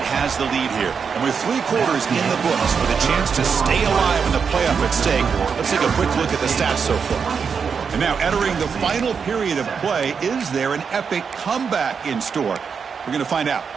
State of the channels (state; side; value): quieter; left; 6.1 dB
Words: has the lead here. And with 3 quarters in the books with a chance to stay alive in the playoff at stake, let's take a quick look at the stats so far. And now entering the final period of play, is there an epic comeback in store? We're going to find out.